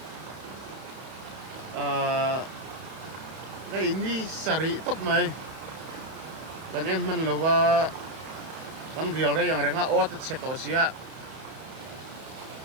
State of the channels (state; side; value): late; left; 32 ms